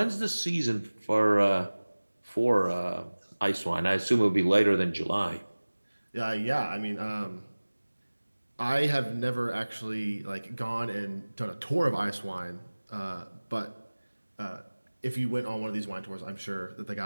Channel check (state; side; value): inverted; both; correlation -1.00